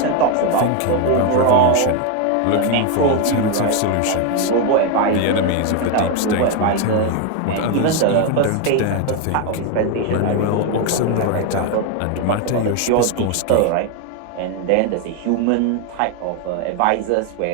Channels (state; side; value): different; both; correlation 0.01